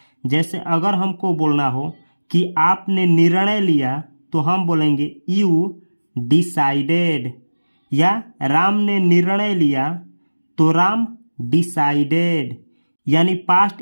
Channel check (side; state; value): both; inverted; correlation -1.00